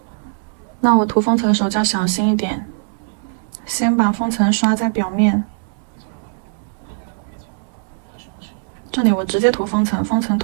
那我涂封层的时候就要小心一点，先把封层刷在表面。这里我直接涂封层，封层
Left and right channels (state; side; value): silent; left; 66 dB below the other